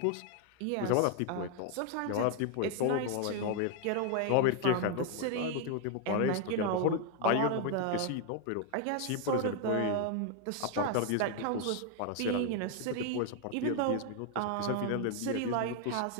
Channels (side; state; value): both; different; correlation 0.00